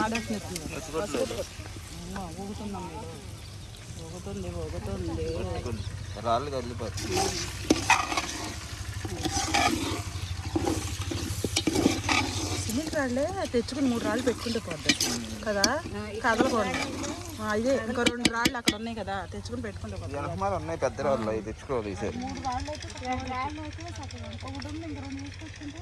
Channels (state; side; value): identical; both; correlation 1.00